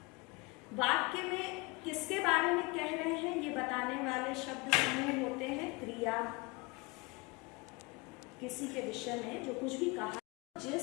वाक्य में किसके बारे में कह रहे हैं ये बताने वाले शब्द समूह होते हैं क्रिया। किसी के विषय में जो कुछ भी कहा,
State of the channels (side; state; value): right; quieter; 26.3 dB